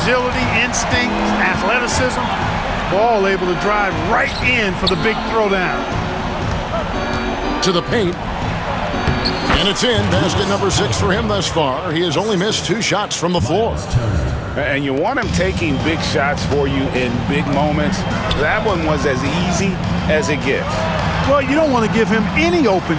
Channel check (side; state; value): both; identical; correlation 1.00